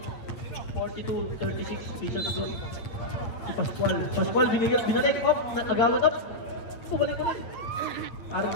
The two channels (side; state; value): right; late; 9.0 ms